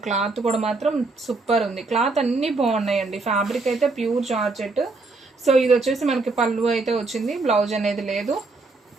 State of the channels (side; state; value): left; quieter; 3.6 dB